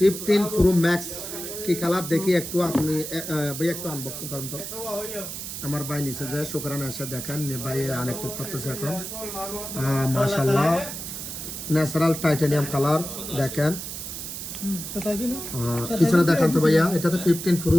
প্রো ম্যাক্স কি কালার দেখি একটু আপনি ভাই একটু আনবক্সিং করেন তো। আমার ভাই নিচে যে শুকরানে এসে দেখেন ভাই আনএক্টিভ করতেছে এখন। মাশাআল্লাহ ন্যাচারাল টাইটানিয়াম কালার দেখেন। পিছনে দেখান তো ভাইয়া, এটা তো 15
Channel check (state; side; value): noise; right; hiss, 7 dB below the sound